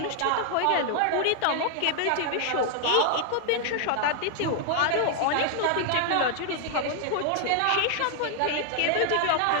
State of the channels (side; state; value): both; different; correlation 0.00